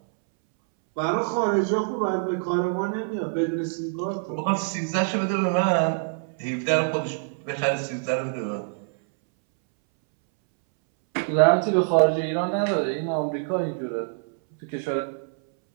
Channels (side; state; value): left; silent; 62 dB below the other